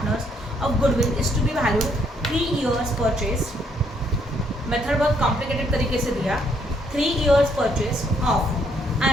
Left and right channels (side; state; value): both; normal; correlation 0.70